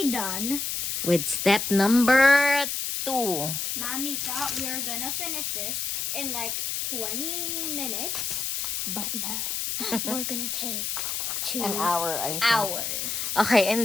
done. With step number 2. Mommy thought we were gonna finish this in like 20 minutes, but no. We're gonna take 2 An hour, I think. hours. Okay,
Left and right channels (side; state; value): left; noise; hiss, 2 dB below the sound